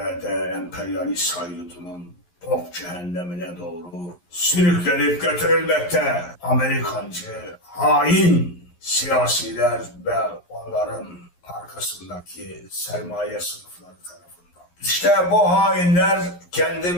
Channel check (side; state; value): right; late; 11 ms